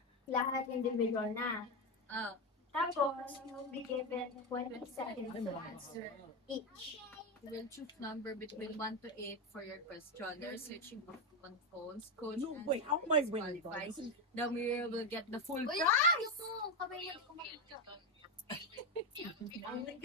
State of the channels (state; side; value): normal; both; correlation 0.11